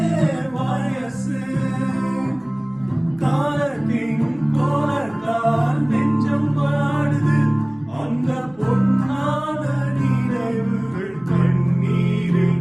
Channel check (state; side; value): noise; left; rumble, 29 dB below the sound